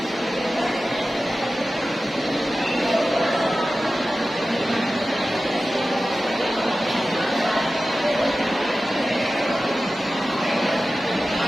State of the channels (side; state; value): both; normal; correlation 0.95